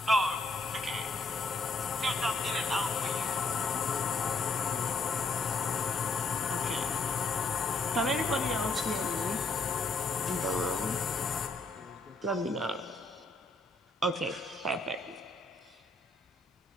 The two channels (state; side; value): quieter; right; 3.1 dB